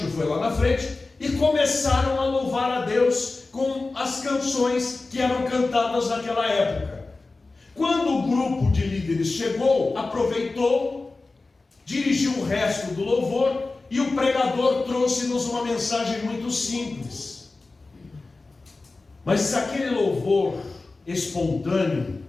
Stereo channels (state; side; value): quieter; right; 3.5 dB